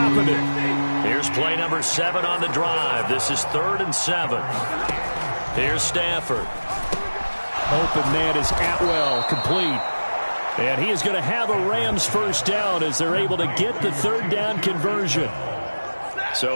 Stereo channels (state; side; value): inverted; both; correlation -1.00